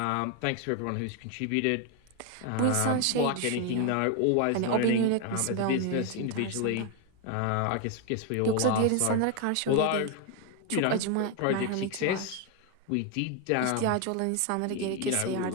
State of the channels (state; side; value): different; both; correlation 0.01